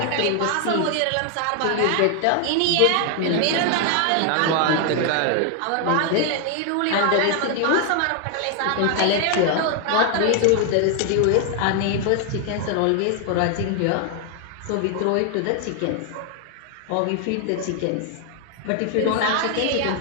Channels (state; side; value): different; both; correlation 0.00